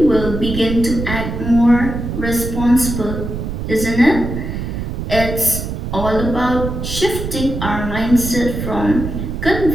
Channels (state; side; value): noise; right; rumble, 5 dB below the sound